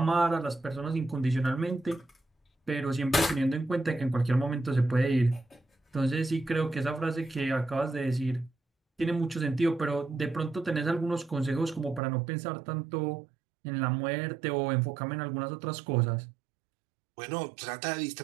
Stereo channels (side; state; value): left; drops out; at 12.0 s